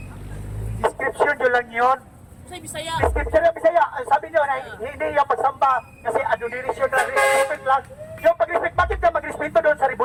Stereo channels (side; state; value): both; identical; correlation 1.00